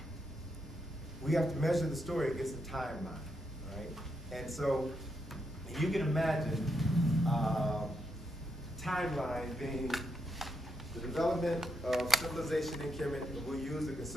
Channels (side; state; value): both; normal; correlation 0.81